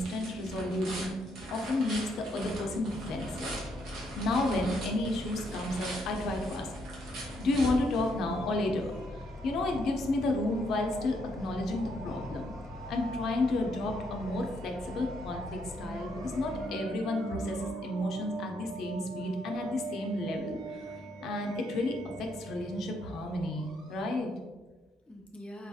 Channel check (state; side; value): normal; both; correlation 0.74